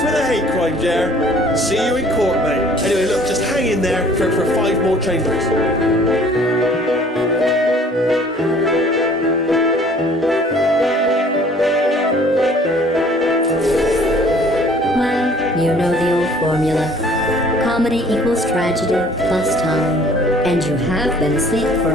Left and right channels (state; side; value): normal; both; correlation 0.54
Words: the hate crime, Jer. See you in court, mate. Anyway, look, just hang in there for 5 more chambers. Well, you know the old formula. Comedy equals tragedy plus time. And you have been asleep for